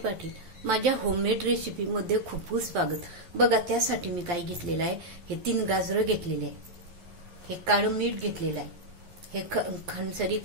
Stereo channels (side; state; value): left; late; 11 ms